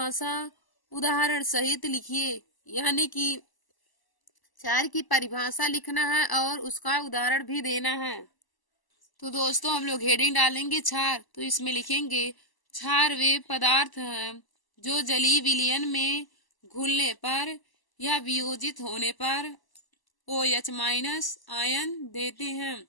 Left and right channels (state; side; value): late; right; 1.0 ms